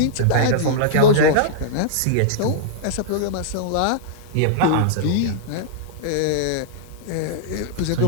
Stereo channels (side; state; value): both; different; correlation -0.02